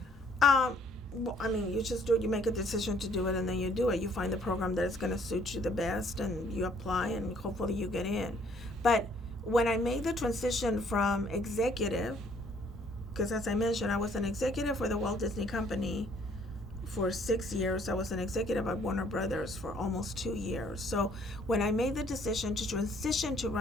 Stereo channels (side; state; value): both; normal; correlation 0.62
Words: Well, I mean, you just do it. You make a decision to do it, and then you do it. You find the program that is going to suit you the best, and you apply, and hopefully you get in. But when I made the transition from executive, because as I mentioned, I was an executive for the Walt Disney Company for 6 years. I was an executive at Warner Brothers for almost 2 years. So when I made the decision to transition to